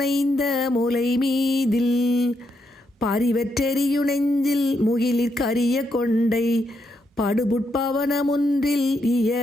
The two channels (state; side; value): normal; both; correlation 0.80